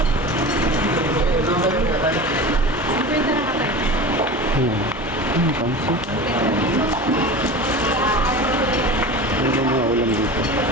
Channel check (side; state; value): both; normal; correlation 0.32